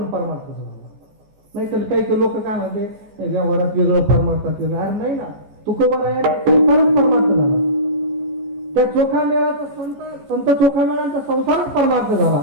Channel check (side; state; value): left; late; 14 ms